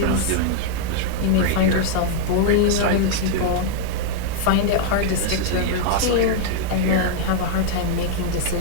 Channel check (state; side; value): different; both; correlation 0.00